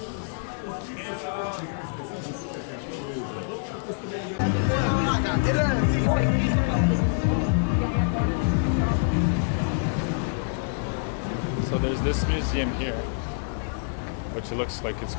So there's this museum here, which looks like it's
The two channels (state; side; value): silent; right; digital silence